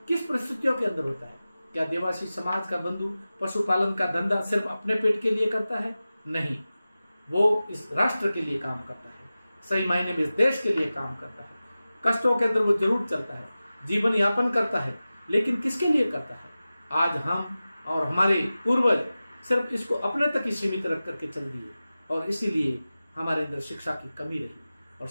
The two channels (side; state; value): both; inverted; correlation -0.96